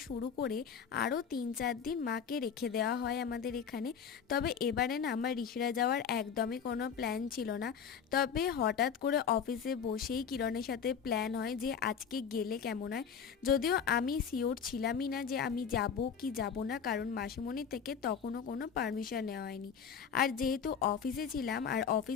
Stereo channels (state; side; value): quieter; right; 7.1 dB